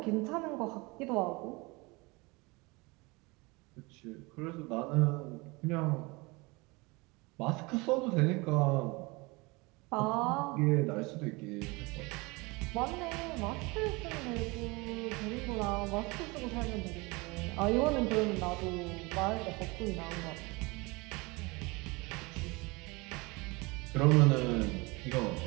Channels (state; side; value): quieter; left; 25.4 dB